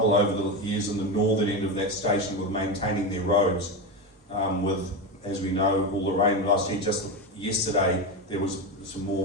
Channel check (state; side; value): normal; both; correlation 0.16